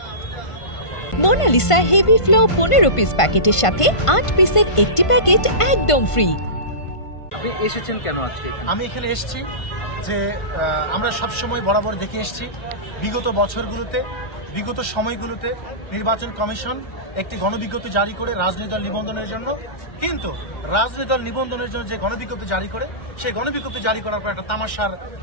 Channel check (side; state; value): right; late; 1.5 ms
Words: মোনালিসা হেভি ফ্লো 15 পিস প্যাকেটের সাথে 8 পিসের একটি প্যাকেট একদম ফ্রি। আপনি এসেছেন কেন আজকে এখানে? আমি এখানে এসেছি যে আমরা সবসময় বরাবর দেখে এসেছি বিগত বছরগুলোতে, বিগত সময়গুলোতে নির্বাচন কমিশন একটি গণবিজ্ঞপ্তি জারি করে রাজনৈতিক দল নিবন্ধনের জন্য, কিন্তু রাজনৈতিক দল নিবন্ধনের জন্য যে গণবিজ্ঞপ্তি জারি করে, সেই গণবিজ্ঞপ্তি জারি করার পর একটা তামাশার,